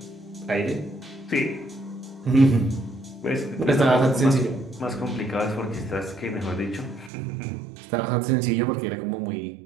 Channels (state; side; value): drops out; left; at 7.1 s